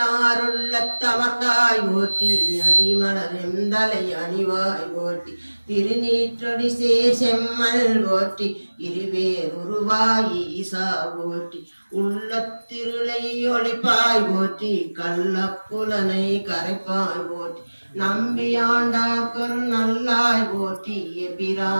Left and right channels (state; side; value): inverted; both; correlation -1.00